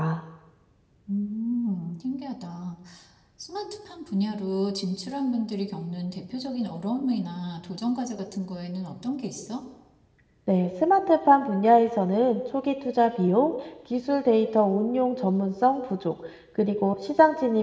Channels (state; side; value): identical; both; correlation 1.00